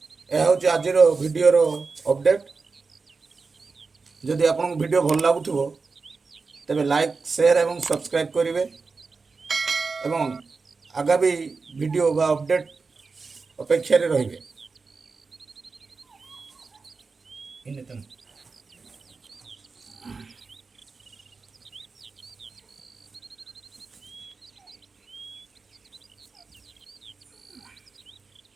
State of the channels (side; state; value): left; quieter; 4.4 dB